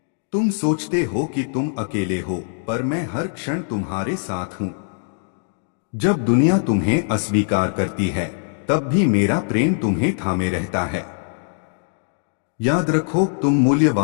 तुम सोचते हो कि तुम अकेले हो, पर मैं हर क्षण तुम्हारे साथ हूं। जब दुनिया तुम्हें अस्वीकार करती है, तब भी मेरा प्रेम तुम्हें थामे रहता है। याद रखो, तुम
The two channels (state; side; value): silent; right; digital silence